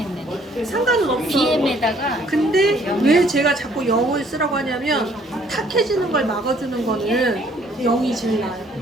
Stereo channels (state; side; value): normal; both; correlation 0.61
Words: 상관은 없어. BM에다가 근데 왜 제가 자꾸 0을 쓰라고 하냐면 탁해지는 걸 막아주는 거는 0이 제일 나아요.